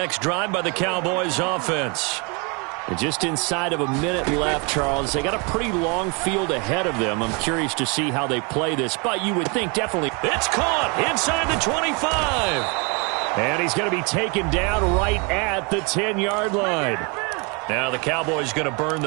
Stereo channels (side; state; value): left; quieter; 31.7 dB